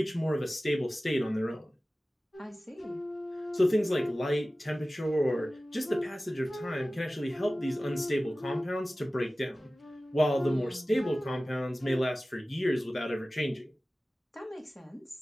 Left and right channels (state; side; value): normal; both; correlation 0.97